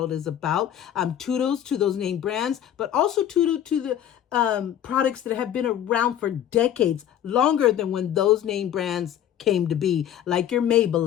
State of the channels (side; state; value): right; quieter; 10.6 dB